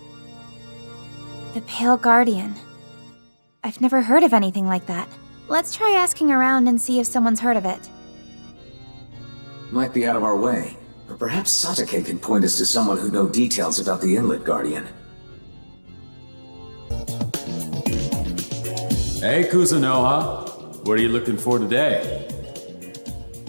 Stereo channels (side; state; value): both; inverted; correlation -1.00